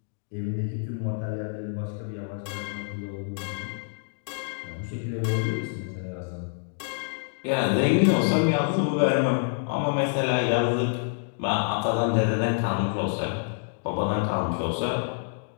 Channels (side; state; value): right; silent; digital silence